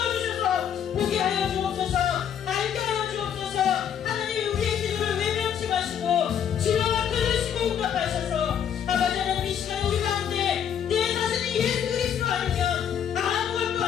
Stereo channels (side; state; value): right; quieter; 8.7 dB